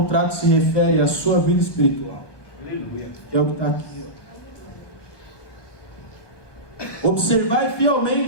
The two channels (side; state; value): right; late; 1.2 ms